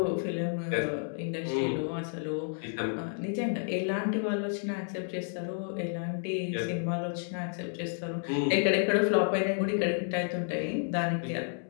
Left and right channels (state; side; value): silent; right; digital silence